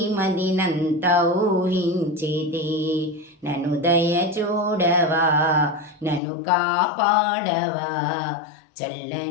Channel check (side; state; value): right; drops out; at 6.2 s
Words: మదినంతా ఊహించితి. నన్ను దయ చూడవా, నన్ను కాపాడవా,